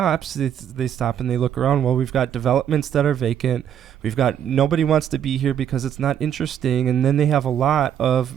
they stop and they look around. Well, we've got developments that are vacant, we've got nobody wants to be here because it's not interesting, and then they have a lot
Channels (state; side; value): quieter; left; 9.6 dB